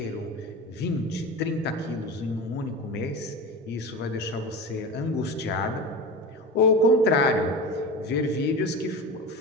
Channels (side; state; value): both; normal; correlation 0.28